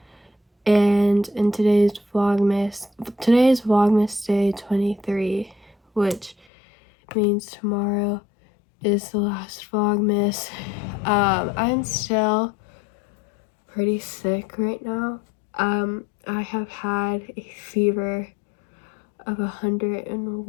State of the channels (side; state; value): right; drops out; at 6.5 s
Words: And in today's Vlogmas day 23, which means tomorrow is the last Vlogmas. I'm still pretty sick right now. I have had a fever of